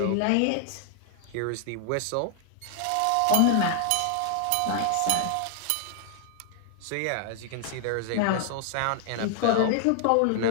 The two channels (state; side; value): different; both; correlation 0.00